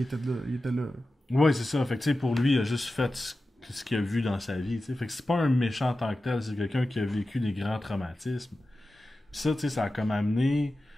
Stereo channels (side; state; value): both; normal; correlation 0.94